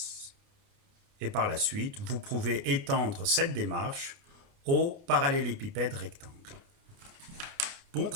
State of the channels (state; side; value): late; left; 29 ms